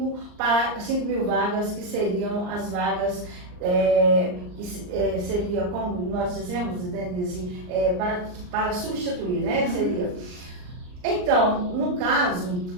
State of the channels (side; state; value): left; late; 39 ms